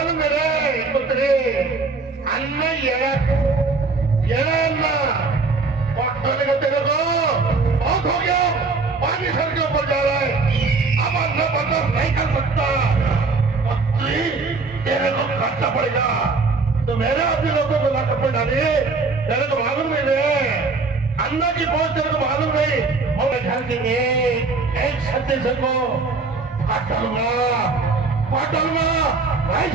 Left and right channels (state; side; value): quieter; left; 4.0 dB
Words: है रे पुत्री अन्न ये अन्न पट्टने का तेरे को बहुत हो गया. पानी सर के ऊपर जा रहा है. अब अन्न बर्दाश्त नहीं कर सकता. पुत्री तेरे को खर्चा पड़ेगा. तो मेरे अपने लोगों को लाकर पे डाली. तेरे को मालूम नहीं है अन्ना की पहुंच तेरे को मालूम नहीं. और घर के एक छत्तीस को काट डालूंगा नहीं